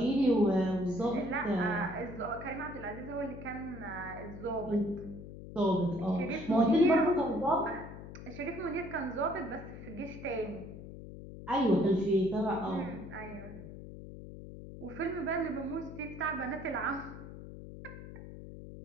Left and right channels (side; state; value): left; noise; hum, 12 dB below the sound